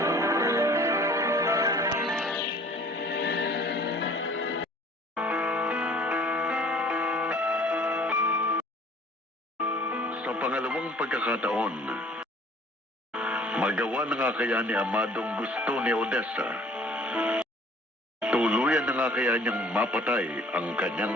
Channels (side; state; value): both; normal; correlation 0.52